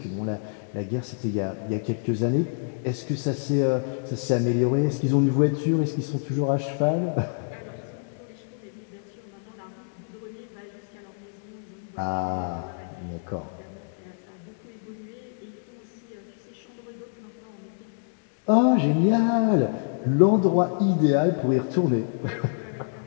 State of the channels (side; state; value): right; silent; digital silence